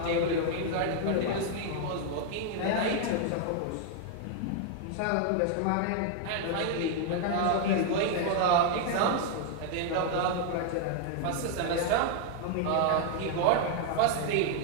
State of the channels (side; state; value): both; different; correlation 0.00